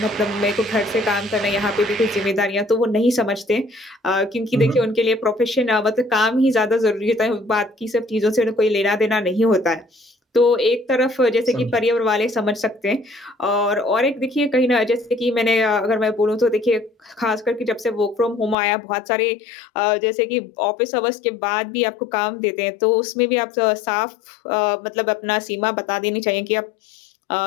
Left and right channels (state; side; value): drops out; right; at 18.6 s